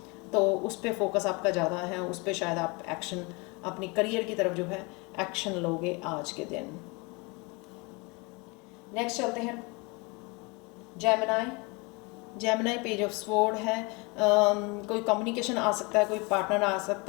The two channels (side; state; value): right; quieter; 28.2 dB